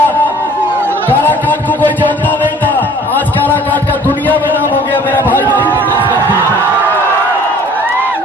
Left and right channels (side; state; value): both; normal; correlation 0.52